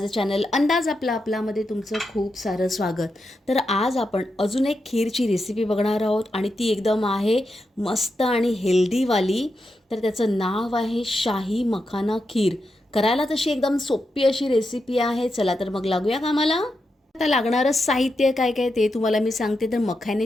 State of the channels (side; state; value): both; normal; correlation 0.86